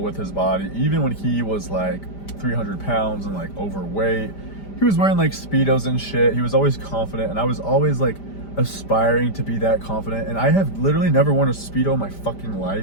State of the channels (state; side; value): late; right; 5.0 ms